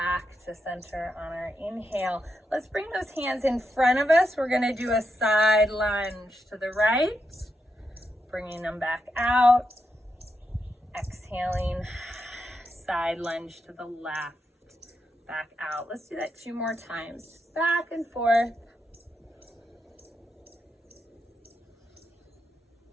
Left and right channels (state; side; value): normal; both; correlation 0.84